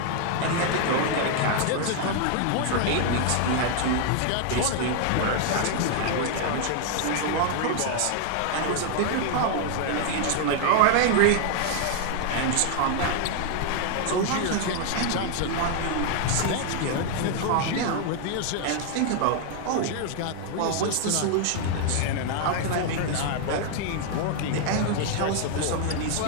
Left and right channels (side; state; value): both; different; correlation 0.00